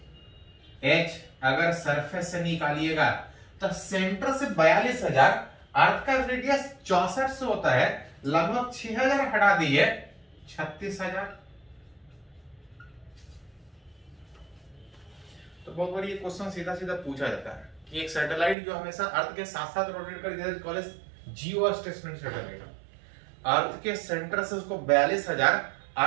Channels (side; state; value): left; drops out; at 18.6 s